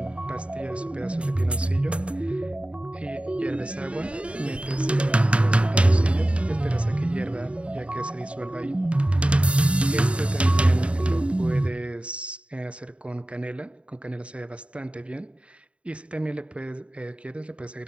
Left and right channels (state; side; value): late; left; 0.061 ms